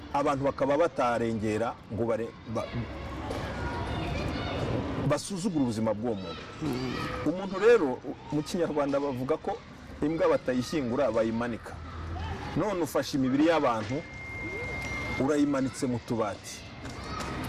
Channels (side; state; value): both; identical; correlation 1.00